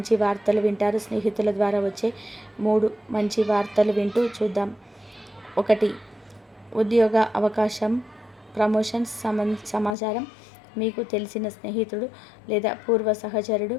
వార్తలు వింటారు. స్నేహితుల ద్వారా వచ్చే 3 మంచి వార్తలు వింటూ చూద్దాం. 1. ఉద్యోగ అవకాశం, ప్రమోషన్స్ సమాచారం. మీకు తెలిసిన స్నేహితుడు లేదా పూర్వ సహచరుడు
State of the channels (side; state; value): right; drops out; at 10.0 s